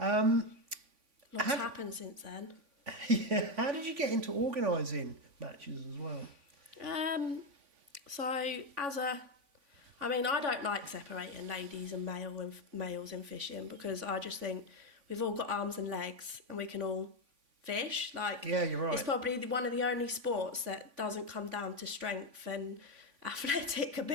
Lots happened since then. Yeah. How did you get into organising matches as well? So I don't like separating ladies and males in fishing, because I just think we've all got arms and legs and we can all fish. Like, yeah, you're right. It's probably one of the only sports that doesn't come down to strength and athletic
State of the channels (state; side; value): late; left; 3.5 ms